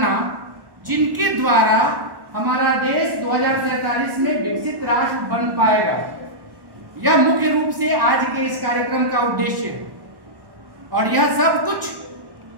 जिनके द्वारा हमारा देश 2047 में विकसित राष्ट्र बन पाएगा। यह मुख्य रूप से आज के इस कार्यक्रम का उद्देश्य है और यह सब कुछ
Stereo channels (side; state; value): left; late; 1.1 ms